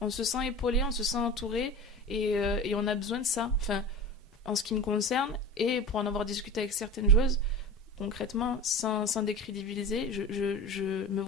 On se sent épaulé, on se sent entouré et on a besoin de ça. Enfin, en ce qui me concerne, et pour en avoir discuté avec certaines joueuses, concrètement, sans décrédibiliser, je me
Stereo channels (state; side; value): normal; both; correlation 0.32